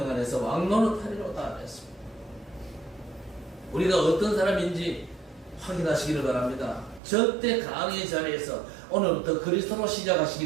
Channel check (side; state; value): left; drops out; at 7.0 s